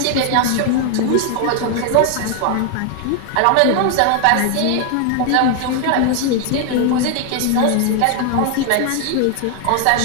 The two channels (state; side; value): different; both; correlation 0.00